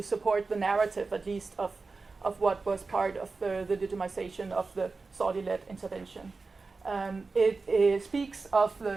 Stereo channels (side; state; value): left; quieter; 4.1 dB